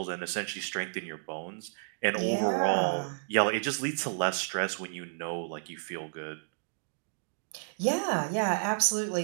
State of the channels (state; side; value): silent; left; digital silence